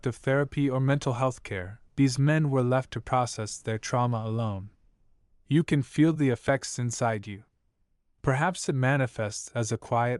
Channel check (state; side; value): identical; both; correlation 1.00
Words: of therapy or mental health care, these men were left to process their trauma alone. You can feel the effects inside you. Perhaps it manifests as a